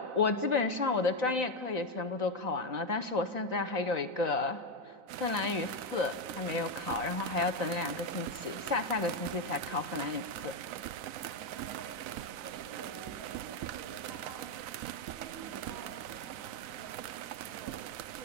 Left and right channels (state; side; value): late; left; 3.9 ms